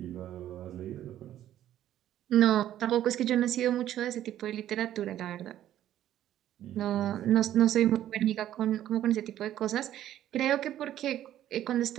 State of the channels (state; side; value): quieter; left; 12.1 dB